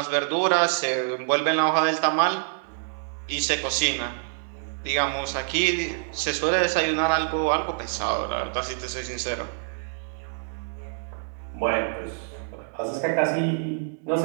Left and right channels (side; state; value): left; silent; 61 dB below the other